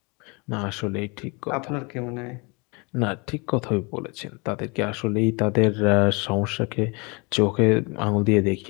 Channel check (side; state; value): right; quieter; 29.5 dB